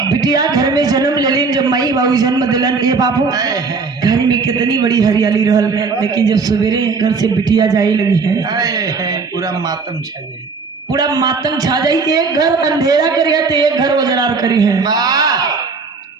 बिटिया घर में जन्म लेलिन, जब मई बाबू जन्म दिलन, ये बाबू घर में कितनी बड़ी हरियाली रहल, लेकिन जब सवेरे घर से बिटिया जाई लगी है पूरा मातम छा जाई, पूरा मातम छा जाई। एक घर अंधेरा करी है तो एक घर उजरार करी है।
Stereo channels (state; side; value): quieter; left; 4.6 dB